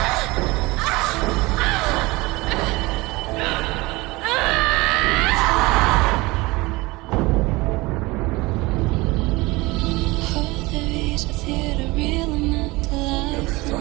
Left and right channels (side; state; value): left; quieter; 22.4 dB